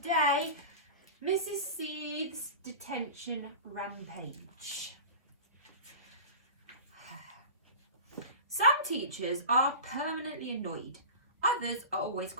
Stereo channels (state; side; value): inverted; both; correlation -0.33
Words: Mrs. Seeth's Detention Rampage. Some teachers are permanently annoyed, others are always